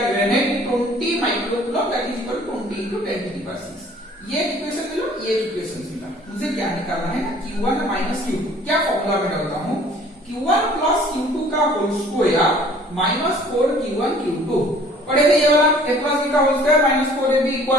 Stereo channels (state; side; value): normal; both; correlation 0.53